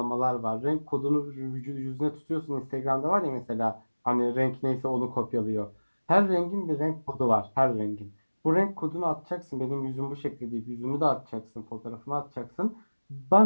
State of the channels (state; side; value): inverted; both; correlation -1.00